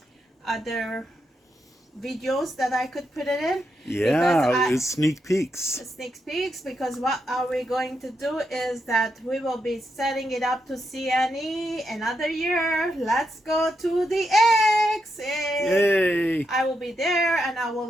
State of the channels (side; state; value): both; normal; correlation 0.83